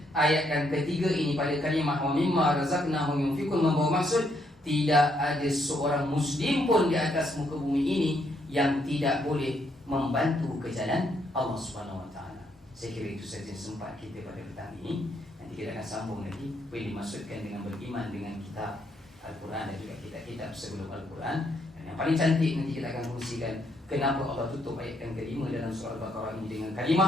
ayat yang ketiga ini pada kalimah wa mimma razaqnahum yunfikun membawa maksud tidak ada seorang muslim pun di atas muka bumi ini yang tidak boleh membantu ke jalan Allah Subhanahu wa taala. Saya kira itu saja sempat kita pada petang ini. Nanti kita akan sambung lagi apa yang dimaksudkan dengan beriman dengan kitab Al-Quran dan juga kitab-kitab sebelum Al-Quran. Dan yang paling cantik nanti kita akan kongsikan kenapa Allah tutup ayat yang kelima dalam surah Al-Baqarah ini dengan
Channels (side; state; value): both; normal; correlation 0.74